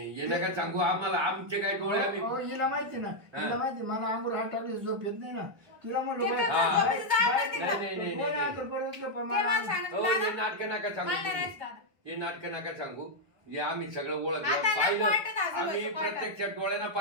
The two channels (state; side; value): late; left; 1.1 ms